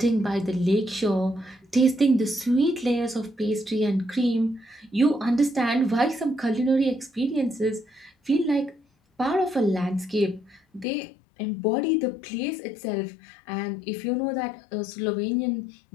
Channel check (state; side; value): drops out; right; at 10.9 s